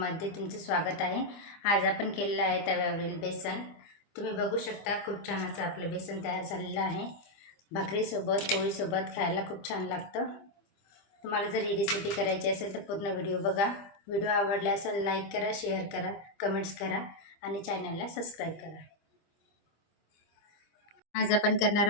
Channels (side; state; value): right; late; 25 ms